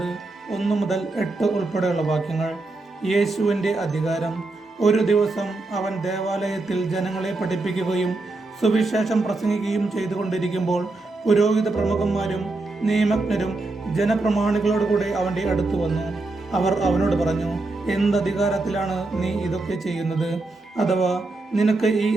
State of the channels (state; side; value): quieter; left; 3.2 dB